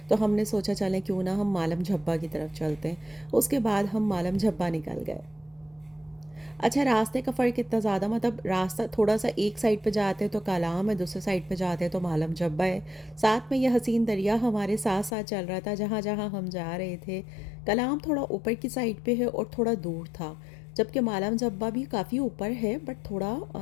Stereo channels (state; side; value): drops out; right; at 15.2 s